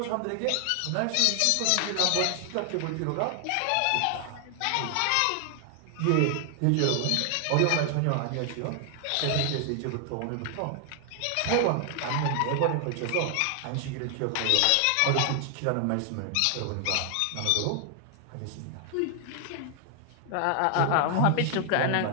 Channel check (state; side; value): different; both; correlation 0.00